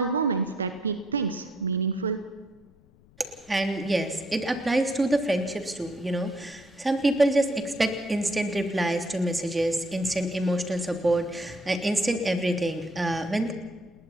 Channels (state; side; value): noise; left; rumble, 28 dB below the sound